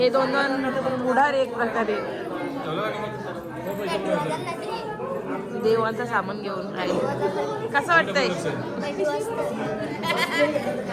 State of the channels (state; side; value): identical; both; correlation 1.00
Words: दोन पुढार एक प्रकारे देवांचं सामान घेऊन राहिले. कसं वाटतंय?